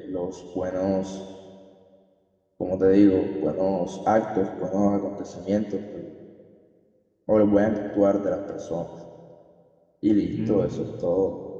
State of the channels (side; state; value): both; identical; correlation 1.00